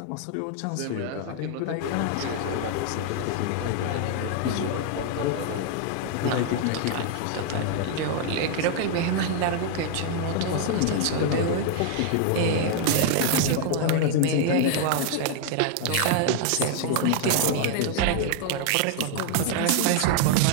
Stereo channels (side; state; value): both; different; correlation 0.00